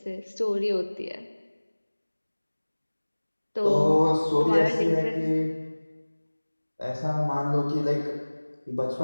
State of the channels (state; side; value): inverted; both; correlation -1.00